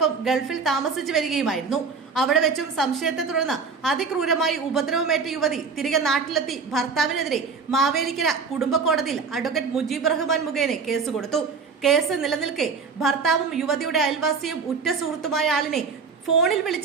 ഗൾഫിൽ താമസിച്ചു വരികയുമായിരുന്നു. അവിടെ വെച്ചും സംശയത്തെ തുടർന്ന് അതിക്രൂരമായി ഉപദ്രവമേറ്റ യുവതി തിരികെ നാട്ടിലെത്തി ഭർത്താവിനെതിരെ മാവേലിക്കര കുടുംബ കോടതിയിൽ അഡ്വക്കേറ്റ് മുജീബ് റഹ്മാൻ മുഖേന കേസ് കൊടുത്തു. കേസ് നിലനിൽക്കെ ഭർത്താവും യുവതിയുടെ അയൽവാസിയും ഉറ്റ സുഹൃത്തുമായ ആളിനെ ഫോണിൽ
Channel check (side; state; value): left; quieter; 5.2 dB